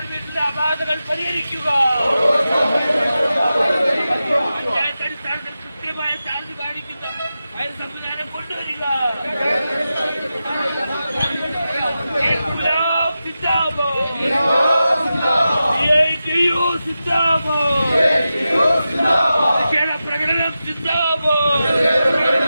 അപാകതകൾ പരിഹരിക്കുക. പഞ്ചായത്ത് അടിസ്ഥാനത്തിൽ കൃത്യമായ ചാർജ് പാലിക്കുന്ന ഫയർ സംവിധാനം കൊണ്ടുവരിക. പ്രകടനം സിന്ദാബാദ്.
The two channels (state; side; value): inverted; both; correlation -0.92